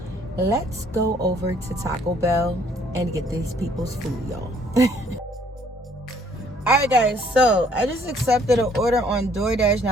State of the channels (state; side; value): normal; both; correlation 0.62